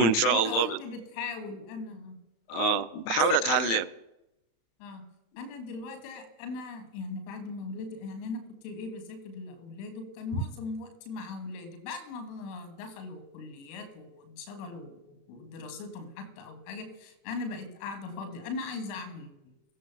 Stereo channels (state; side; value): late; right; 35 ms